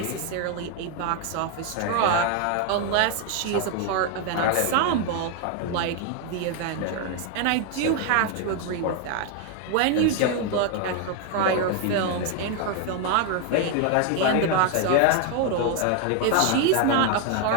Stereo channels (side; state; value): both; different; correlation 0.01